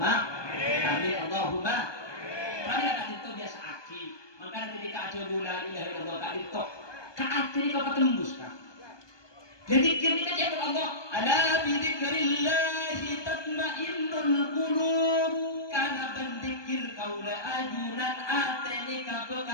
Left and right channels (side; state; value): right; late; 1.2 ms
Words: Amin Allahumma. Kami kata itu biasa aki. Maka ketika aja la ilaha illallah tak ditok. Kaakhir kau tembus kan. Jadi kita jawab Allah, ala bidzikrillahi tatmainnul qulub. Karena berzikir kau la ajunan ateni ka